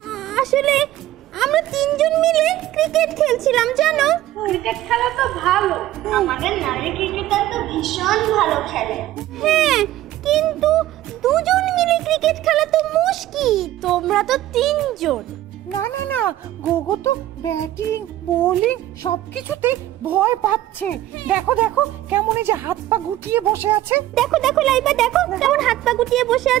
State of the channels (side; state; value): left; quieter; 14.4 dB